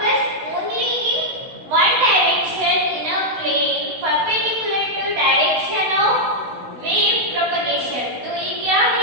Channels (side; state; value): left; late; 16 ms